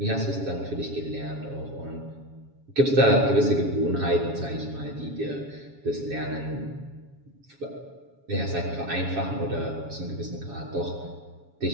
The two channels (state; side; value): late; left; 7.2 ms